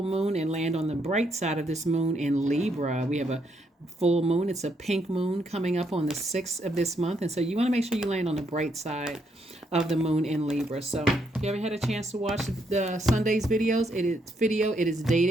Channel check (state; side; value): normal; both; correlation 0.75